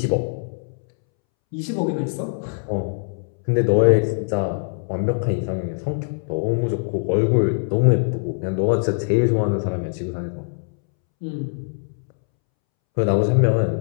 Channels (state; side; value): silent; right; 64 dB below the other